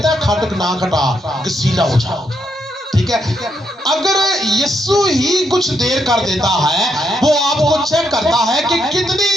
है खटक ना खटा, गसीला हो जाओ। ठीक ठीक है। अगर यीशु ही कुछ देर कर देता है, वो आपको चेक करता है कि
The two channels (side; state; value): both; normal; correlation 0.78